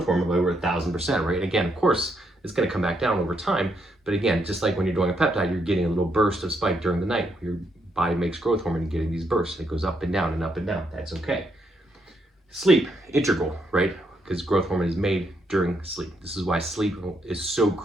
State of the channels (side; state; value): both; normal; correlation 0.76